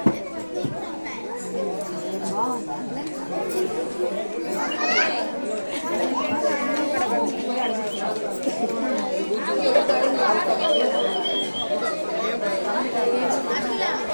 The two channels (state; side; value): inverted; both; correlation -1.00